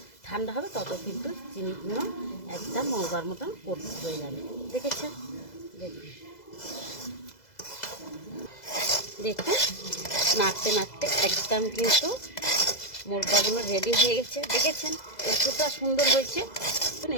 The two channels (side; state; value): right; late; 2.0 ms